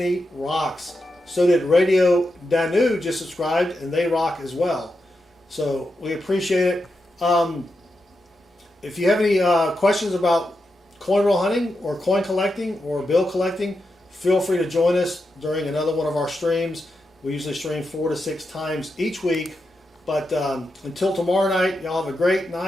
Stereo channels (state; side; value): normal; both; correlation 0.87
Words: rocks. So did Radio Danu just subscribed, and they rock as well. So we appreciate it. If you have any questions about coin roll hunting or coin collecting or bill collecting, feel free to join us during another one of our streams. We usually stream 4 to 6 times each week. But until tomorrow night, y'all have a great